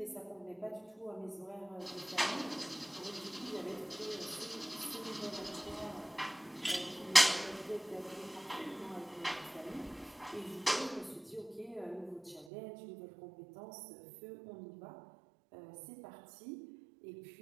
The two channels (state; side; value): drops out; left; at 12.5 s